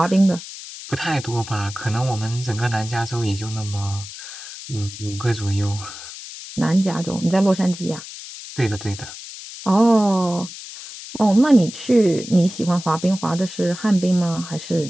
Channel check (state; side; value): noise; left; hiss, 13 dB below the sound